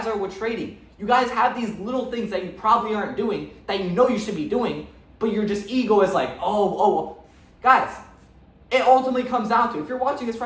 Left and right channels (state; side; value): identical; both; correlation 1.00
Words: are with trading. You guys have these little things that you probably aren't doing that you know you should be doing, but your just ego is like, oh. Guys, it ultimately comes down to, if you're watching this